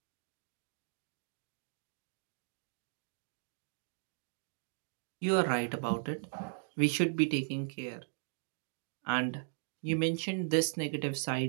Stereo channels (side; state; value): left; silent; digital silence